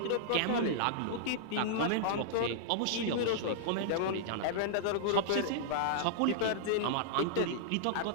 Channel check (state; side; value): different; both; correlation -0.02